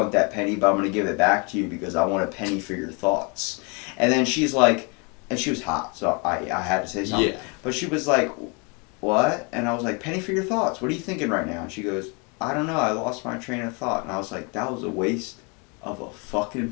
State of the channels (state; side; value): quieter; right; 32.1 dB